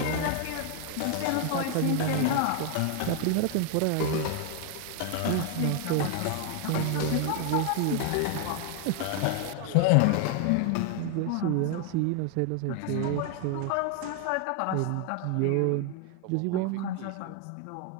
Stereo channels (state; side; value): different; both; correlation 0.00